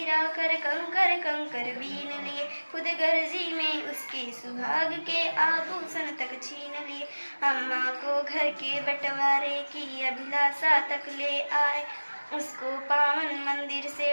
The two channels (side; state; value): both; inverted; correlation -1.00